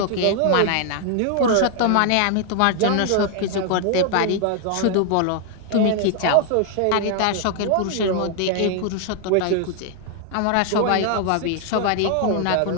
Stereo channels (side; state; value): both; different; correlation 0.00